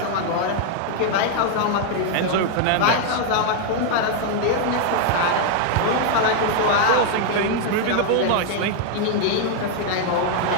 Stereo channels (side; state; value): both; different; correlation 0.00